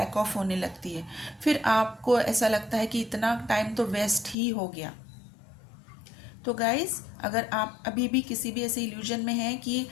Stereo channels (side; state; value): right; drops out; at 4.4 s